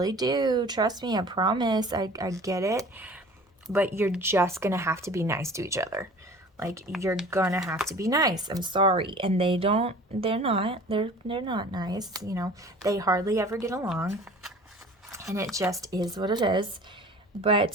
do. Trust me, I promise. I get it. But you're just gonna have to be nice to each other. Like, you're gonna have to be nice. I'm sorry. And they're not nice, They hardly ever get along. And it just is what it is.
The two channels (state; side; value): normal; both; correlation 0.44